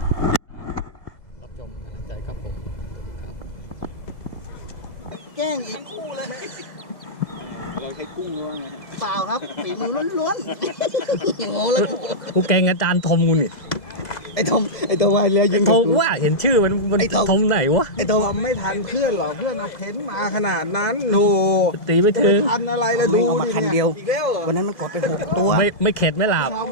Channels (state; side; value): late; right; 2.0 ms